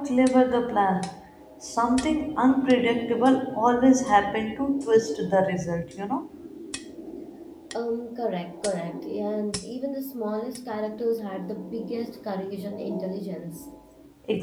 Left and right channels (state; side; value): identical; both; correlation 1.00